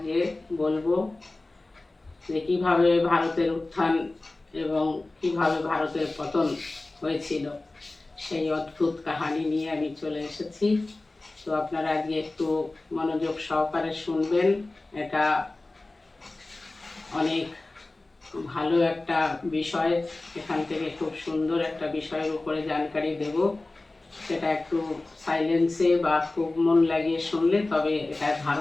বলবো যে কীভাবে ভারতের উত্থান এবং কিভাবে ভারতের পতন হয়েছিল, সেই অদ্ভুত কাহিনী নিয়ে আমি চলে এসেছি। তো আপনারা আজকে একটু মনোযোগ সহকারে শুনবেন। এটা অনেক ভালো একটা বিষয়, এখান থেকে খুব সুন্দর একটা বিষয়ের উপরে জানকারি দেব। সেটা একটু সাইলেন্সে বা খুব মন লাগিয়ে শুনলে তবে এটা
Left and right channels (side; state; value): right; quieter; 3.0 dB